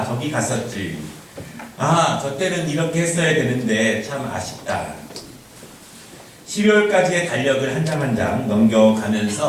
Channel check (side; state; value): both; identical; correlation 1.00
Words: 저기 갔었지, 저 때는 이렇게 했어야 되는데 참 아쉽다. 12월까지의 달력을 한 장 한 장